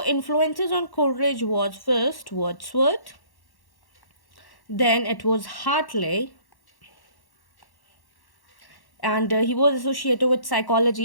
influences on Coleridge was first Wordsworth, then it was Hartley, and he was associated with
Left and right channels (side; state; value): right; late; 1.1 ms